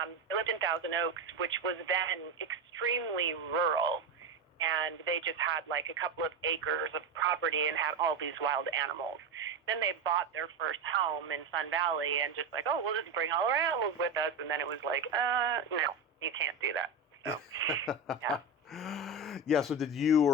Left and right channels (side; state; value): left; quieter; 3.8 dB